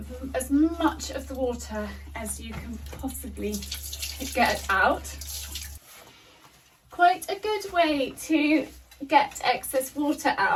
as much of the water as you can possibly get out. Quite a good way to get excess water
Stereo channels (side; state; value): both; identical; correlation 1.00